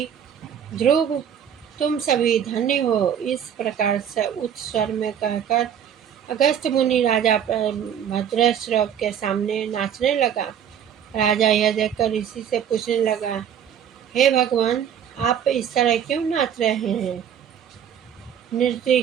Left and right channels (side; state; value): left; quieter; 8.8 dB